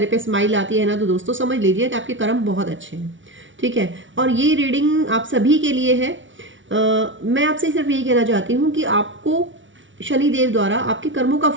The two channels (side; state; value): left; late; 0.56 ms